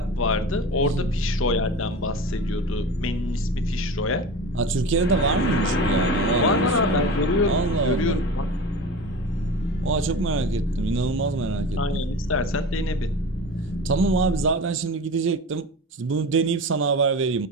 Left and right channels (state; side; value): normal; both; correlation 0.32